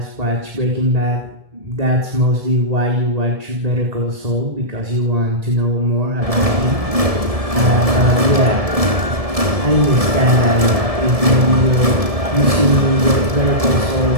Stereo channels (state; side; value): late; left; 1.7 ms